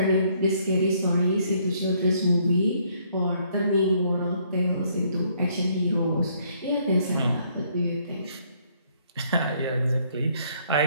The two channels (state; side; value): inverted; both; correlation -0.67